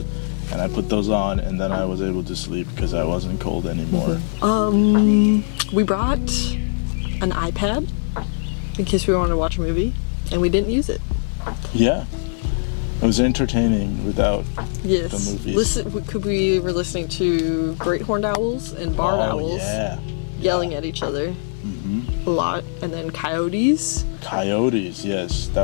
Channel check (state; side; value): silent; right; digital silence